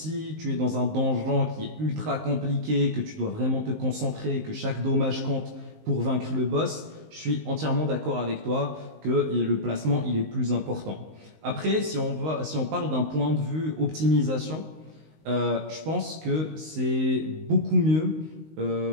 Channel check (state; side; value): late; left; 19 ms